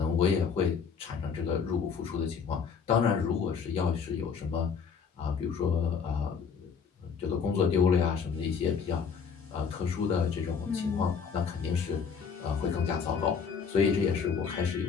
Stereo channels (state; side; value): quieter; right; 6.2 dB